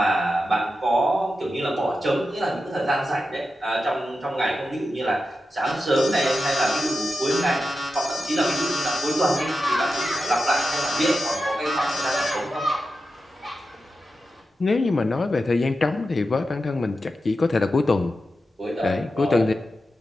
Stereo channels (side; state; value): both; normal; correlation 0.91